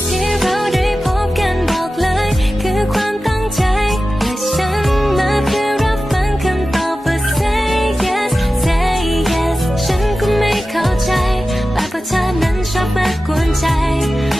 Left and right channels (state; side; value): normal; both; correlation 0.94